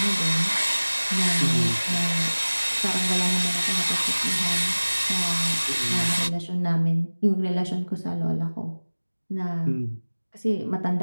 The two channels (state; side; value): inverted; both; correlation -1.00